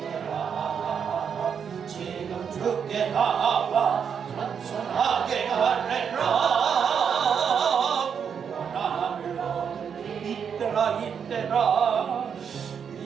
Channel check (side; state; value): left; quieter; 7.2 dB